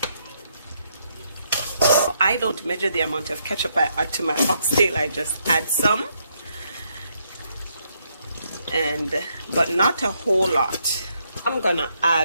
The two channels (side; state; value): both; inverted; correlation -0.75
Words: I don't measure the amount of ketchup I add to my oxtail. I just add some. But not a whole lot. I'm gonna